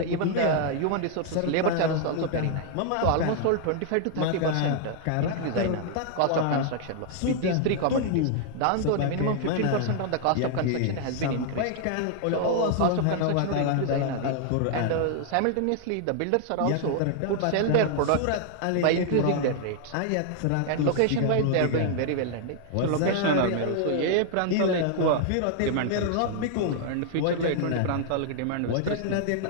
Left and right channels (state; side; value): different; both; correlation 0.00